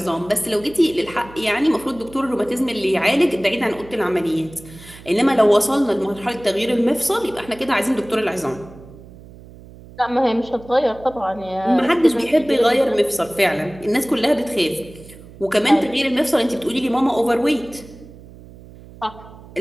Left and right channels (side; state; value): right; noise; hum, 19 dB below the sound